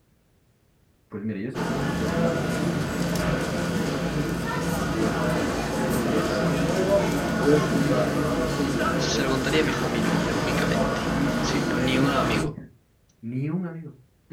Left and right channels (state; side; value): identical; both; correlation 1.00